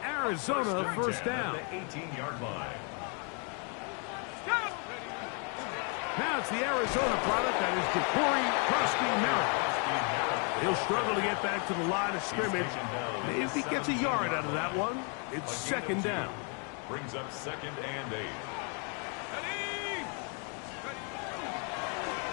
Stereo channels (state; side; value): quieter; right; 38.1 dB